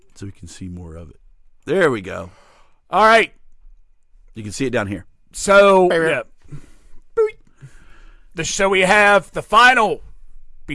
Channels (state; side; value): identical; both; correlation 1.00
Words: So we can see more of it. There we go. All right. You can see it down here. So, yeah. So we have the final